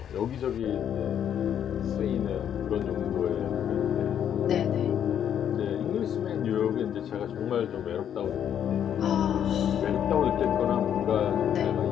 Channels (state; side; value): quieter; right; 9.4 dB